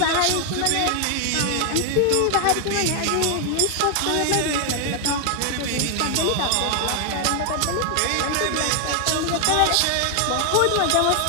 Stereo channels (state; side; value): different; both; correlation 0.00